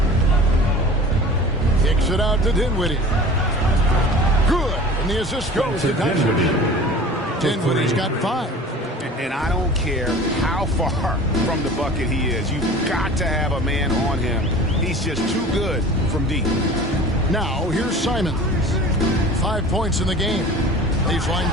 Kicks it out to Dinwiddie. Good. And the assist goes to Doncic. Dinwiddie's got 5. And I don't care how far from the bucket he is. You've got to have a man on him. He's just too good from deep. Now, here's Simons. 5 points in the game. Baseline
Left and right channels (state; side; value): normal; both; correlation 0.41